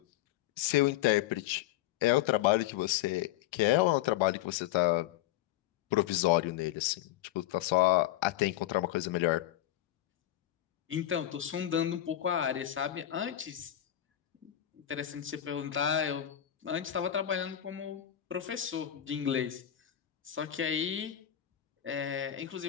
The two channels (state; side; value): quieter; right; 12.5 dB